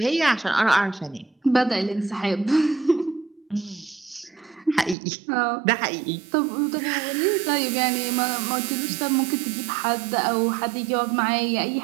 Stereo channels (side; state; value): left; drops out; at 5.0 s